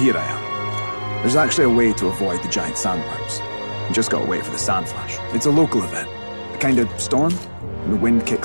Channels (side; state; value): both; inverted; correlation -1.00